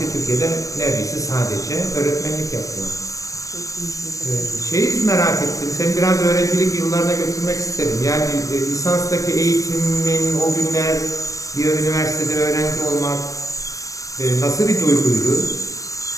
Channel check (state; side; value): late; right; 0.16 ms